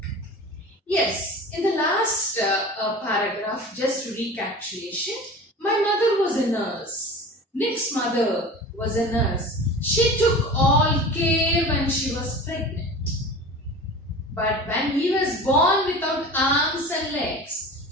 Yes, in the last paragraph, just recapitulation. My mother was a nurse. Nick's mother was a nurse. She took all care when she was pregnant. But when he was born without arms and legs,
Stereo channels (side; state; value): both; normal; correlation 0.36